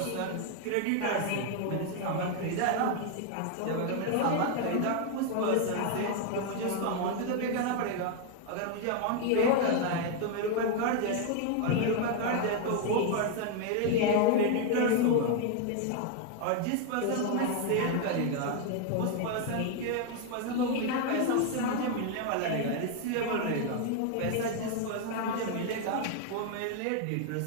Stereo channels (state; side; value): different; both; correlation 0.01